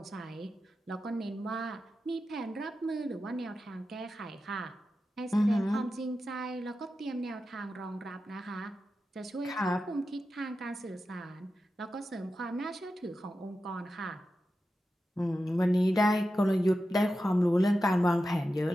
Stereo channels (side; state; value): both; normal; correlation 0.91